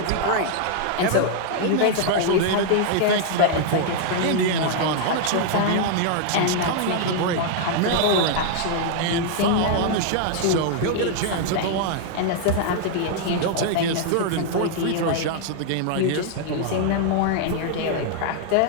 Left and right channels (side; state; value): both; different; correlation 0.00